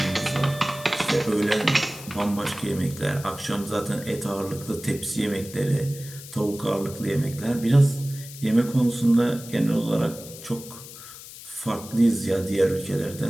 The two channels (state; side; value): noise; left; hiss, 15 dB below the sound